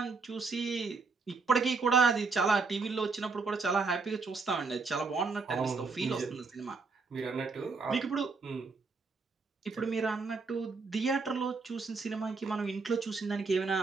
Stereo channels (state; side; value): quieter; left; 4.3 dB